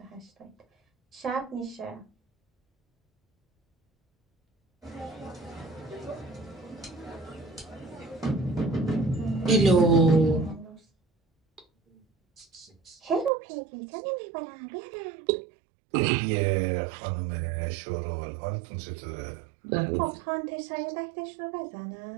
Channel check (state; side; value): drops out; left; at 13.3 s